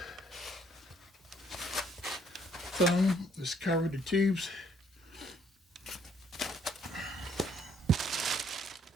foam that's covered the tubes.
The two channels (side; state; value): both; normal; correlation 0.65